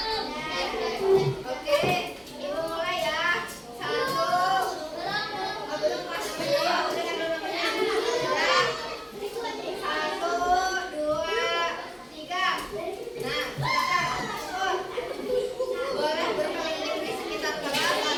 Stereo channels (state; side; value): identical; both; correlation 1.00